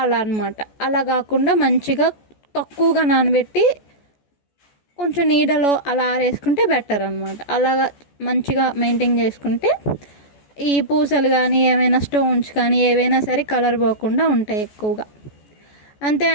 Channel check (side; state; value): right; late; 14 ms